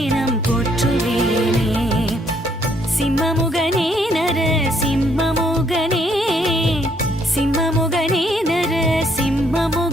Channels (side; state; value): both; normal; correlation 0.68